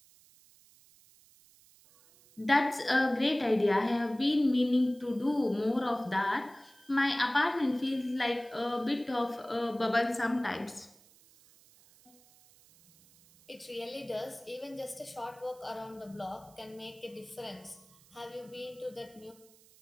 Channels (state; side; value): noise; right; hiss, 27 dB below the sound